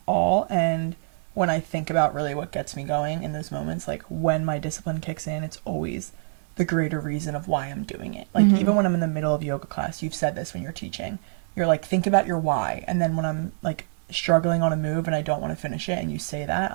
all. And when I think about really what gets me going in those moments, like when my discipline kicks in, it's always the greater reason of why I'm doing it. Like even when I'm in the middle of yoga class, you've said this when you're teaching, you're like, think about your why. And then when I'm like struggling on a move and I don't want to finish it and you say that,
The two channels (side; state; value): left; silent; digital silence